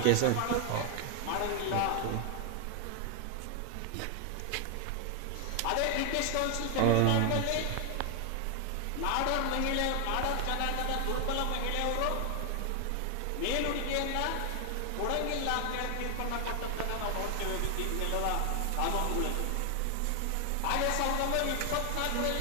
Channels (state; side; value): different; both; correlation 0.00